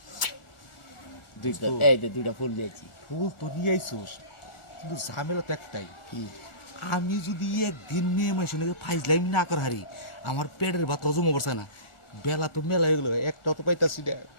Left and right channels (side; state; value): right; late; 1.4 ms